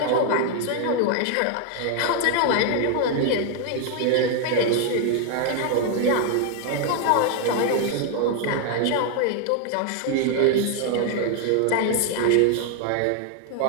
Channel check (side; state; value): both; different; correlation 0.00